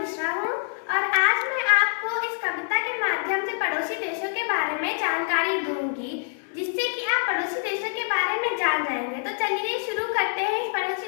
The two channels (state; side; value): silent; right; 61 dB below the other